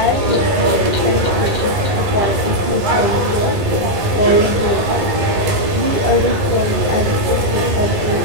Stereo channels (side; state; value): left; late; 11 ms